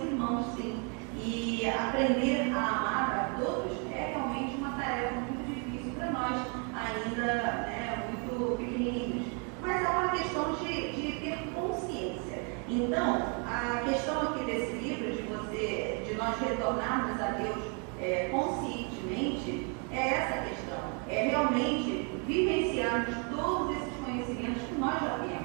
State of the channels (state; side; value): quieter; left; 36.3 dB